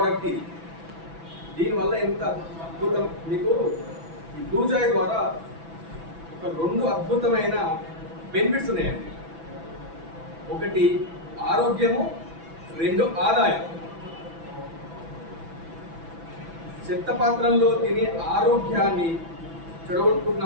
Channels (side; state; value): left; late; 6.0 ms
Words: ఇది, దీనివల్ల ఎంత అద్భుతం. మీకు ఈ బ్లూ జాయ్ ద్వారా ఒక 2 అద్భుతమైన బెనిఫిట్స్ ఉన్నాయండి. ఒకటి ఆరోగ్యము, 2 ఆదాయం. చెత్త పాత్రల్లో తిని ఆరోగ్యాన్ని చెడగొట్టుకున్న